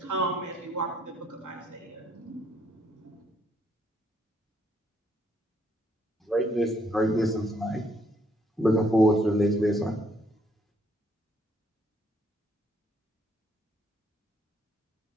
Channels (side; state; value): both; normal; correlation 0.69